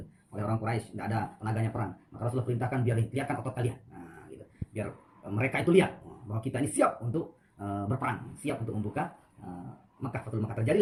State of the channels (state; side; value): identical; both; correlation 1.00